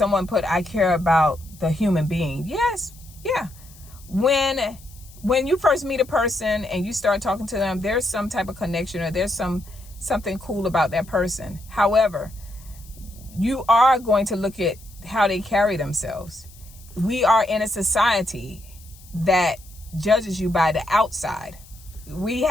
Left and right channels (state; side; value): noise; left; hiss, 23 dB below the sound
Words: put, I care about the human being. Yes. Yeah. When you first meet a person and you start talking to them, there's some type of connection or there's something cool about that person. However, you are going to look at how they carry themselves. We are in a society that judges you by the outside. We